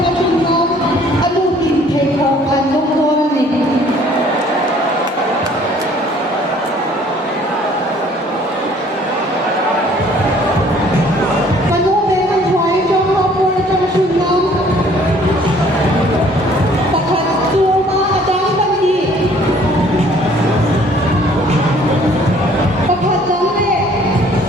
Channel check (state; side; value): normal; both; correlation 0.57